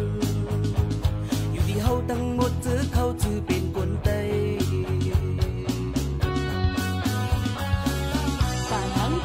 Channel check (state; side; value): identical; both; correlation 1.00